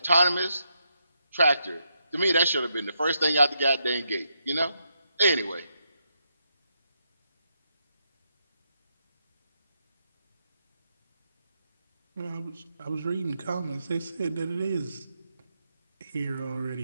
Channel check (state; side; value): inverted; both; correlation -0.81